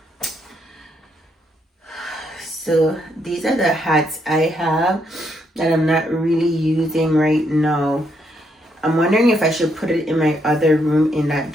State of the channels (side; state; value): both; normal; correlation 0.75